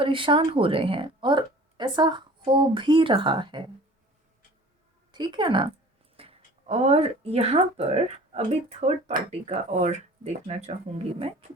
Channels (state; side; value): normal; both; correlation 0.45